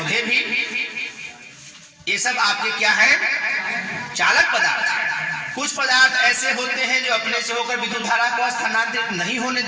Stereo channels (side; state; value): both; identical; correlation 1.00